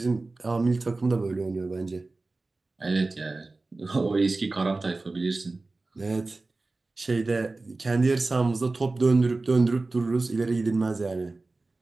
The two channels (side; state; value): left; quieter; 3.4 dB